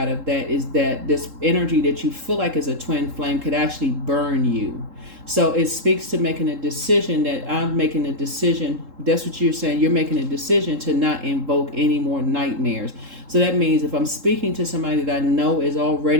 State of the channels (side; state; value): left; late; 3.7 ms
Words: of that is that this energy that you feel like is a twin flame could actually burn you. So it speaks to making a decision that I'm making a decision. That's what you're saying. You're making a decision to not invoke any more nightmares. So that means if I'm speaking to somebody that I know is